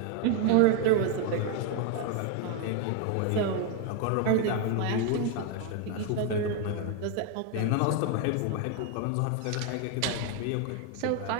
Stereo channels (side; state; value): both; different; correlation 0.01